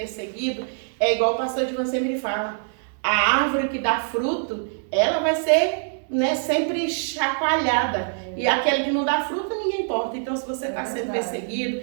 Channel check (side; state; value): left; silent; 63 dB below the other